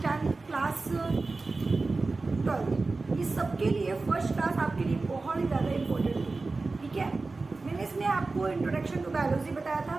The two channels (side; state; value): left; quieter; 3.7 dB